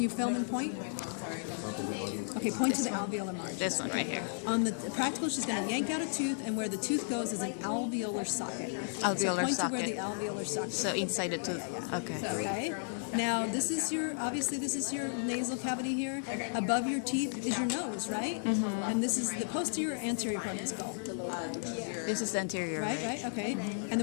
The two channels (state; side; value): silent; right; digital silence